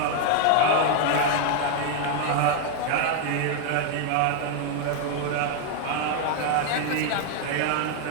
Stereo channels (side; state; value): both; different; correlation 0.00